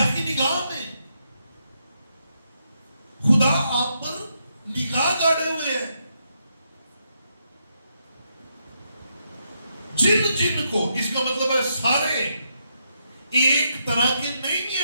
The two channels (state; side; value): inverted; both; correlation -0.80